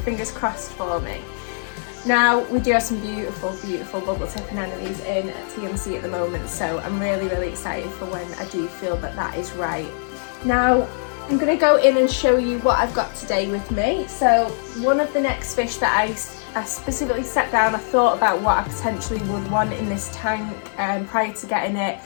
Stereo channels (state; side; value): silent; right; digital silence